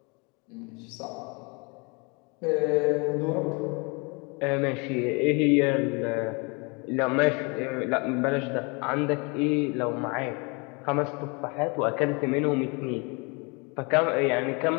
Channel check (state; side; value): quieter; right; 30.6 dB